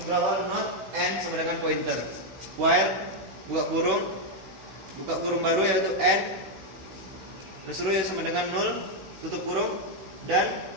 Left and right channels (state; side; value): late; left; 16 ms